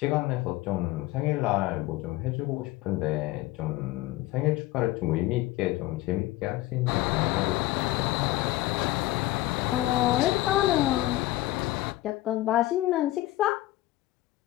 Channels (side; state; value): right; quieter; 17.1 dB